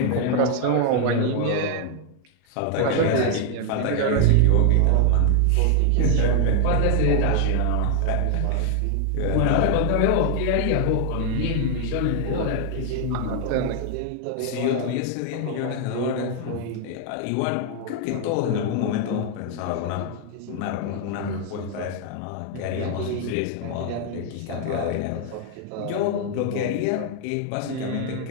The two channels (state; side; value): different; both; correlation 0.00